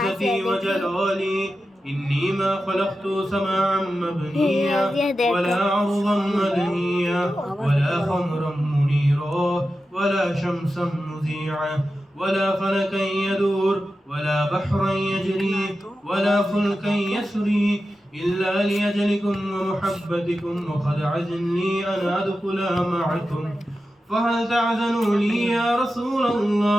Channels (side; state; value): both; normal; correlation 0.92